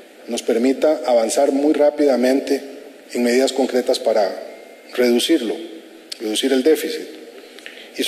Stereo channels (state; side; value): identical; both; correlation 1.00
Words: nos permita avanzar muy rápidamente en medidas concretas para reducir el déficit. Y